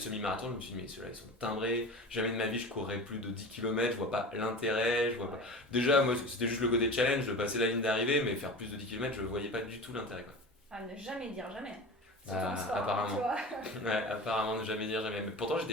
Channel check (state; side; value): normal; both; correlation 0.33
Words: semi-marathon, je me suis dit, mais ceux-là ils sont timbrés, jamais de ma vie je courrais plus de 10 km, je vois pas l'intérêt, je vois pas. Ouais. Déjà, moi c'était juste le côté challenge de passer la ligne d'arrivée, mais faire plus de 10 km, je voyais pas du tout l'intérêt quoi. À ne jamais dire jamais. Surtout en Bah, sport, hein, tu apparemment. vois. Ouais, apparemment, ne jamais dire jamais. Mais pourtant,